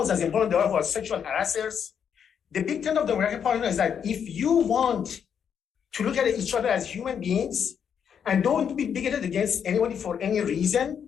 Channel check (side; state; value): right; quieter; 7.7 dB